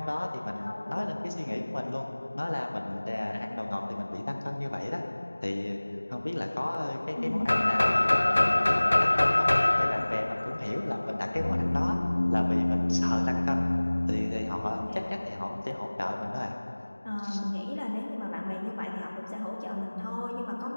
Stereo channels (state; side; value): inverted; both; correlation -1.00